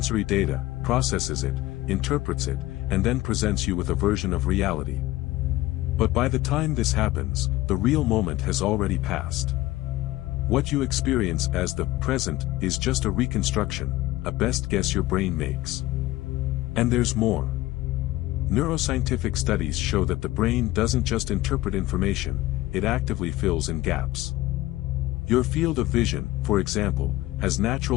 data, processes it, interprets it, and then presents you with a version of reality. But by the time this happens, the real moment has already passed. What you experience as the present is just a reconstruction, a best guess your brain makes. And there's more. Neuroscientific studies show that the brain doesn't just interpret information, it actively fills in gaps. Your field of vision, for example, has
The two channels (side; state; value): right; quieter; 17.4 dB